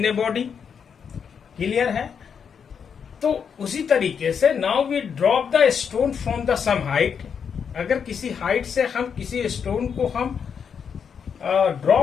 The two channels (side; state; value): right; quieter; 6.9 dB